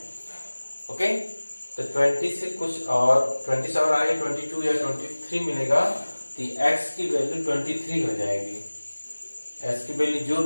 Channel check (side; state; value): both; inverted; correlation -1.00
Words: ओके, तो 20 से कुछ और 20 से और आगे 22 या 23 मिलेगा, तो x की वैल्यू 23 हो जाएगी। x की वैल्यू जो